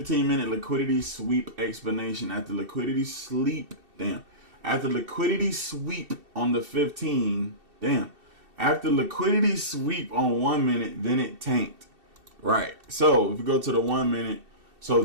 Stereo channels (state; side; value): late; left; 2.7 ms